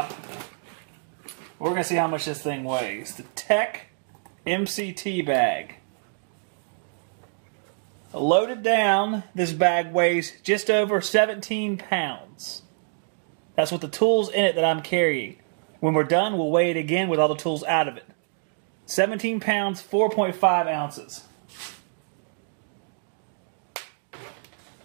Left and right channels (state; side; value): silent; left; digital silence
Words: We're going to see how much this thing weighs. The Tech MCT bag. Loaded down, this bag weighs just over 17 pounds. That's with the tools in it that I'm carrying. When we're done, we'll weigh it again with all the tools out of it. 17 pounds, 4.5 ounces.